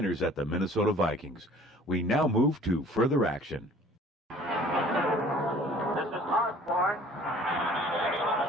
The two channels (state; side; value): normal; both; correlation 0.50